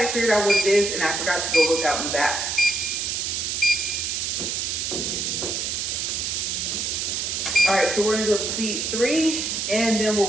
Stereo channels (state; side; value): noise; right; hiss, 1 dB below the sound